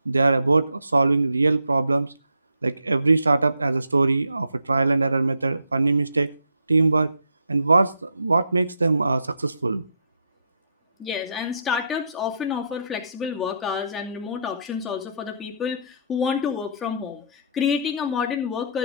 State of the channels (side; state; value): both; inverted; correlation -0.70